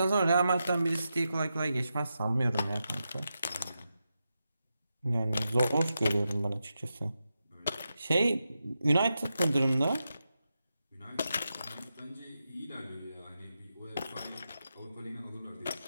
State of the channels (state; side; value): inverted; both; correlation -0.88